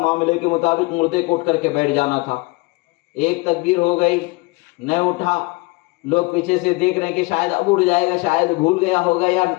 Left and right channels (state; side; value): quieter; right; 25.4 dB